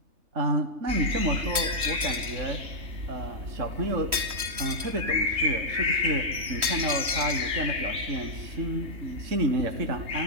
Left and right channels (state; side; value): late; left; 3.1 ms